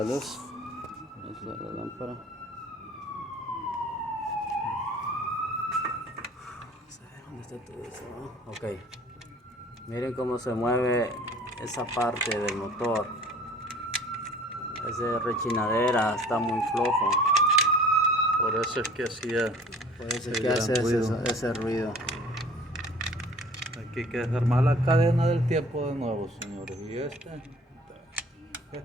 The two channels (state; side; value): normal; both; correlation 0.49